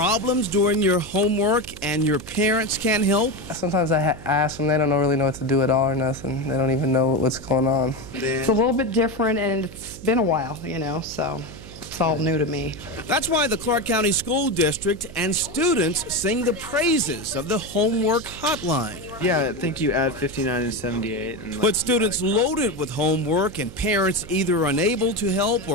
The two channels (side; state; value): right; noise; hum, 16 dB below the sound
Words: doing your homework and your parents can't help? Sometimes I ask them, they don't really know what to do at all or nothing. They don't even know what's going on. It's a little bit different, and it's been a while, you know, so it's all new to me. That's why the Clark County School District and students sing the praises of the homework hotline. Yeah, I think you add 59 and 78. And But students loaded with homework and parents either unable to help